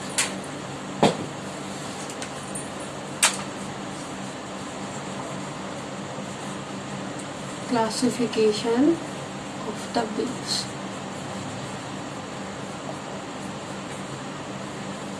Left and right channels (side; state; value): both; identical; correlation 1.00